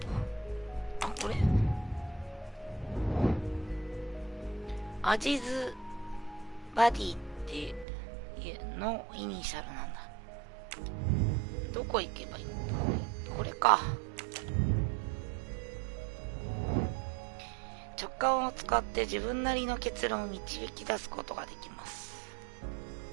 あ、これアジズバディっていうのイニシャルなんだ。どこ行けばいいの。これか。直感を使って自分なりの結論を導き出すことができます。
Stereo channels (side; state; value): left; drops out; at 7.9 s